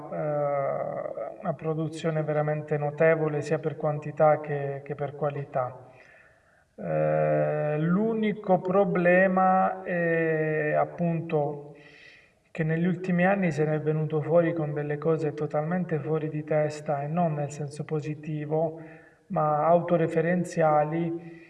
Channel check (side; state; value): both; identical; correlation 1.00